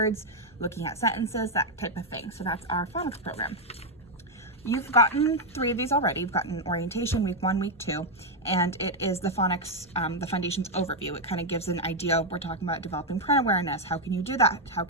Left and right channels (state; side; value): normal; both; correlation 0.01